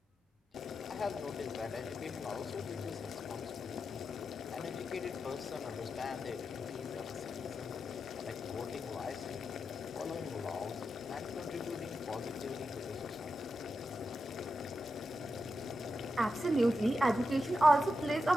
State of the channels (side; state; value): both; normal; correlation 0.88